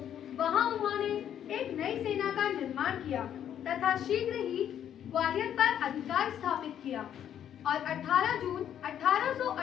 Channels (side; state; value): right; quieter; 9.9 dB